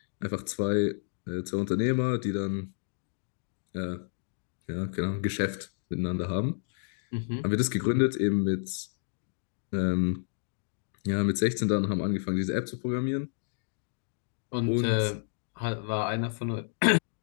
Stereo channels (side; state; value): right; silent; digital silence